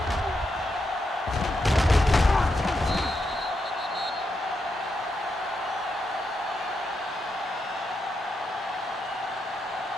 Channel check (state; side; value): normal; both; correlation 0.84